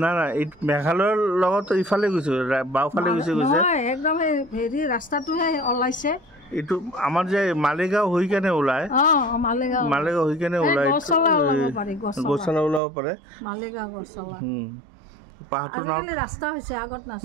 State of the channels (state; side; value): drops out; left; at 12.8 s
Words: না এই মেঘালয়ৰ লগত ইফালে গৈছে বাওঁফালে গৈছে একদম হেৰি ৰাস্তাটোহে ওলাইছে এইটো আমাৰ যে মালিগাঁও হৈ কেনে ওলায় মালিগাঁও হৈ কেনে ওলায় গছলা ওলাব পাৰে মালিগাঁও গছলা পাহাৰটোৰ নাম ৰাস্তা হৈছে আগত